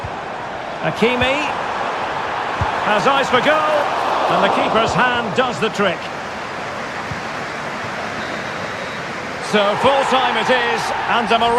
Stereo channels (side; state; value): both; identical; correlation 1.00